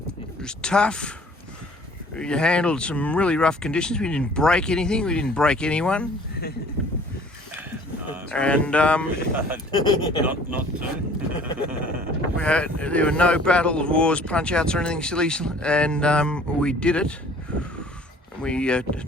It was tough. You handled some really rough conditions. We didn't break anything. We didn't break anyone. And not to. there were no battles, wars, punch-outs or anything silly, and we did it. We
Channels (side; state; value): both; normal; correlation 0.53